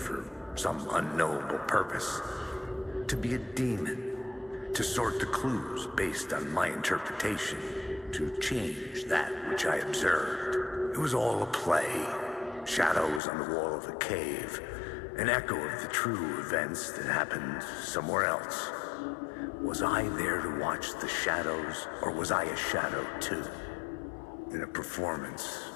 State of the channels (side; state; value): right; drops out; at 13.2 s